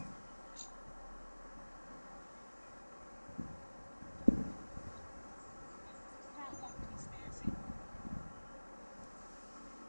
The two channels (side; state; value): both; inverted; correlation -1.00